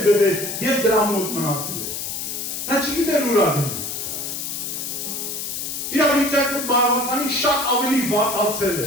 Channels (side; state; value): left; noise; hiss, 5 dB below the sound